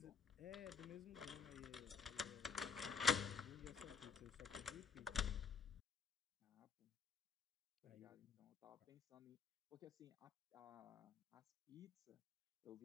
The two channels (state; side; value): quieter; right; 5.7 dB